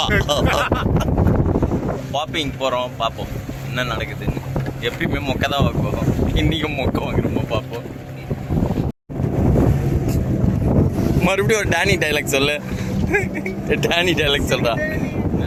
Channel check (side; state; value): both; identical; correlation 1.00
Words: பாப்பிங் போகிறோம், பார்ப்போம் என்ன நடக்குதுன்னு. எப்பயுமே மொக்க தான் வாங்குவோம், இன்றைக்கும் மொக்க வாங்குறோமா பார்ப்போம். மறுபடியும் ஒரு டேனி டைலாக் சொல்லு. டேனி டைலாக் சொல்றா.